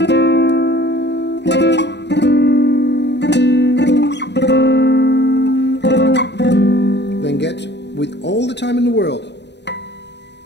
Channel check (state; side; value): late; right; 0.50 ms